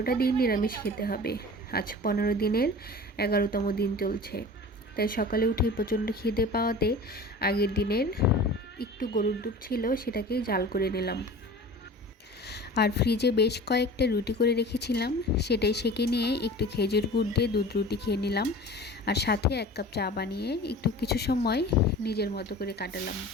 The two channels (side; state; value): both; normal; correlation 0.38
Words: দিন নিরামিষ খেতে হবে। আজ 15 দিনের 11তম দিন চলছে। তাই সকালে উঠে প্রচণ্ড খিদে পাওয়াতে আগের দিনের একটু গরুর দুধ ছিল, সেটাকেই জাল করে নিলাম। আর ফ্রিজে বেশ কয়েকটা রুটি করে রেখেছিলাম, সেটাই সেঁকে নিয়ে একটু খেজুর গুড় দিয়ে দুধ রুটি খেয়ে নিলাম। আর সাথে 1 কাপ চা বানিয়ে একটু কিছু সময় নিজের মতো করে কাটালাম।